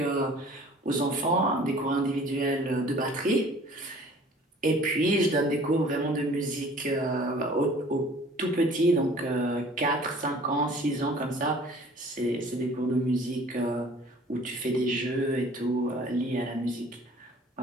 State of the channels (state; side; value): normal; both; correlation 0.50